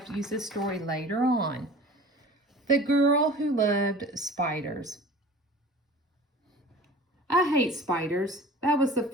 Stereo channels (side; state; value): both; normal; correlation 0.42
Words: to use this story later on. The Girl Who Loved Spiders. I hate spiders. That was the